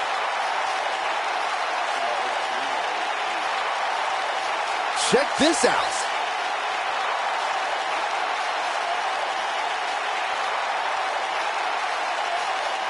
Check this out.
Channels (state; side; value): identical; both; correlation 1.00